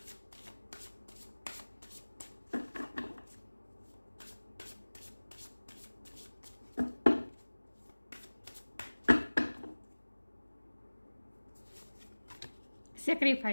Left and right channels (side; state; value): both; inverted; correlation -1.00